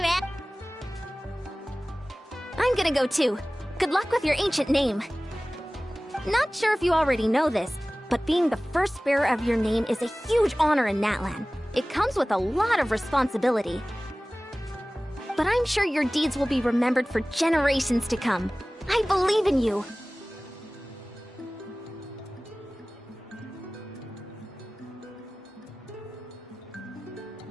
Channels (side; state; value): both; normal; correlation 0.98